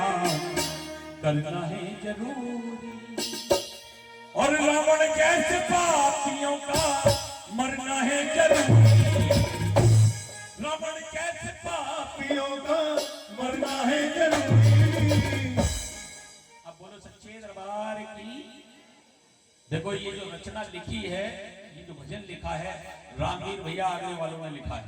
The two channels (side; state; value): both; identical; correlation 1.00